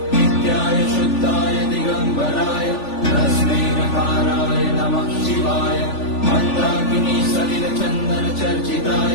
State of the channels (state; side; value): late; right; 3.4 ms